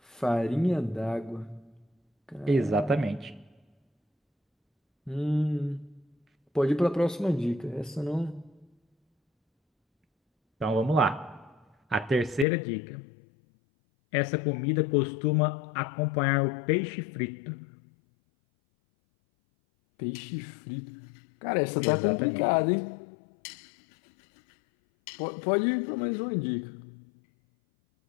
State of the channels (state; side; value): drops out; right; at 12.5 s